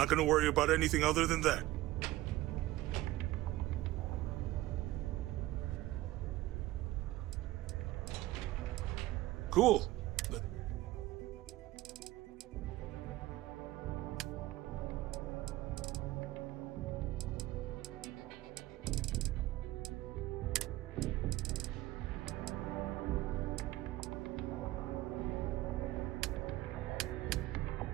gonna worry about anything other than that. Cool.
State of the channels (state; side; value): quieter; left; 17.0 dB